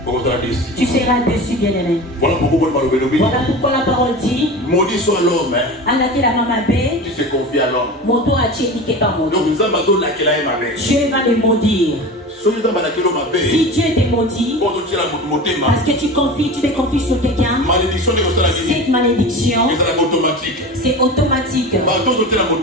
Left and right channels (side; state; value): both; normal; correlation 0.31